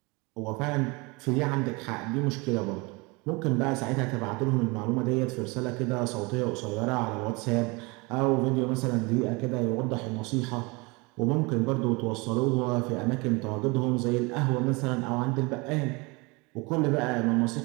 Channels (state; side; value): quieter; left; 26.9 dB